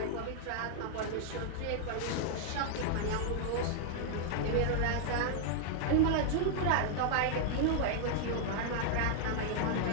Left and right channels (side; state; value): both; different; correlation -0.01